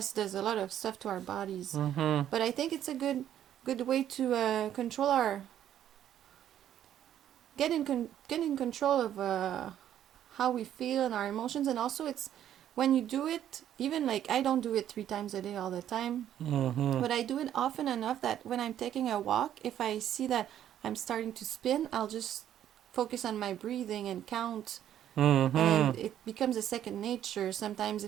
does a lot of stuff to our bodies. But I think it's a good way to control our get in control of how we feel and our emotions. And also it's when you do it, even like I don't do it 3 times a day all the time, but I do it often enough that when I'm taking a walk, if I see that I'm starting to spin, I'll just focus on my breathing and count, and it becomes a second nature. Sometimes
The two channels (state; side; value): quieter; left; 10.9 dB